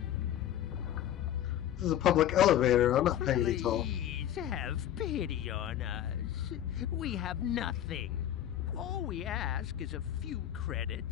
This is a public elevator. I'm not paying any toll. Please have pity on us. We have nothing. All we ask is a few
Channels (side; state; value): right; quieter; 11.3 dB